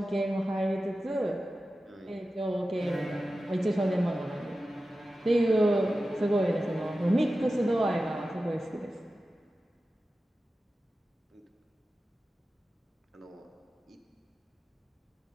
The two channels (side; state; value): both; normal; correlation 0.94